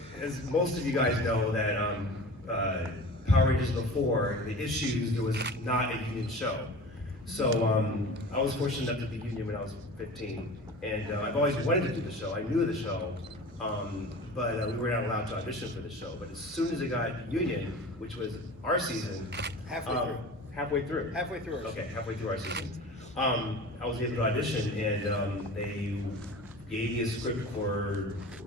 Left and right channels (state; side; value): normal; both; correlation 0.37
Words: as most of you guys know, that Power Rangers before the issues, there was not a union show. So I was fortunate enough to be union when I was 15, and I've always wanted to do the show. I knew the show, but we were not allowed to audition for the show. But as soon as it got union, which was our season, Halfway through. halfway through. Halfway through our Okay, halfway through our season. I was able to audition, and they gave me a script for